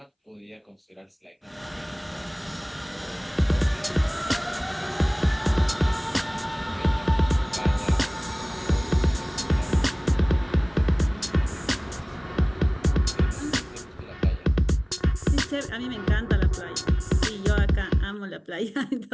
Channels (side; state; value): both; identical; correlation 1.00